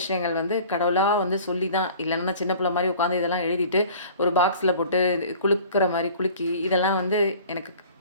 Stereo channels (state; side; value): inverted; both; correlation -0.46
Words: வந்து கடவுளா வந்து சொல்லி தான் இல்லன்னா நான் சின்ன பிள்ளை மாரி உட்காந்து இதெல்லாம் எழுதிட்டு, ஒரு பாக்ஸ்ல போட்டு குலுக்குற மாரி குலுக்கி, இதெல்லாம் வந்து எனக்கு